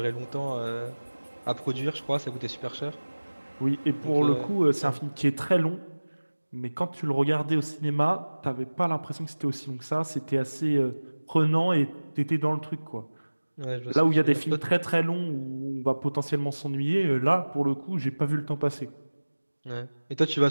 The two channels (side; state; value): both; inverted; correlation -1.00